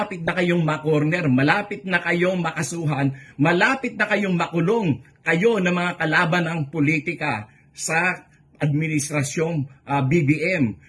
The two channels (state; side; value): identical; both; correlation 1.00